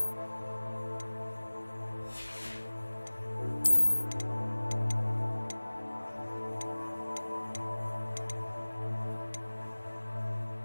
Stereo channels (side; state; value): both; inverted; correlation -1.00